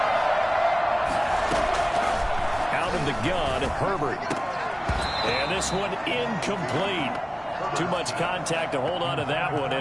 Out of the gun, Herbert. And this one incomplete. Too much contact to hold on to that one,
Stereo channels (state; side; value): identical; both; correlation 1.00